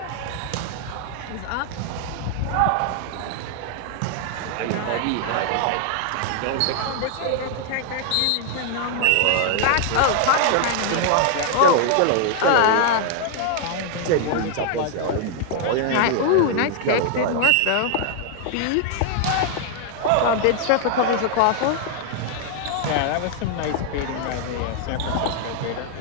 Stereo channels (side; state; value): both; different; correlation 0.00